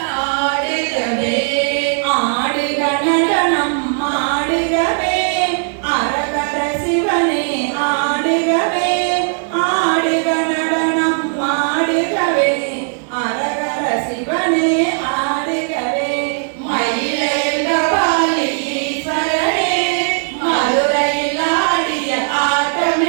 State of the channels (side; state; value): left; silent; 60 dB below the other